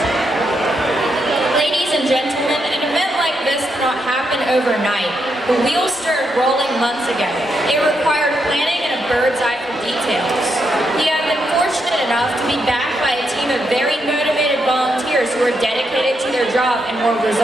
Ladies and gentlemen, an event like this cannot happen overnight. The wheels started rolling months ago. It required planning and a bird's eye for details. We have been fortunate enough to be backed by a team of very motivated volunteers who are dedicated to their job and more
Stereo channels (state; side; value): normal; both; correlation 0.81